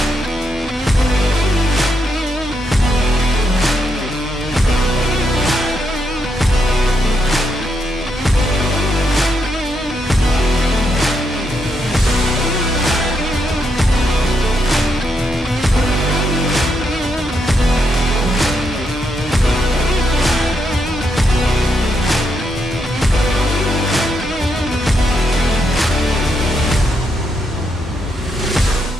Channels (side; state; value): both; normal; correlation 0.80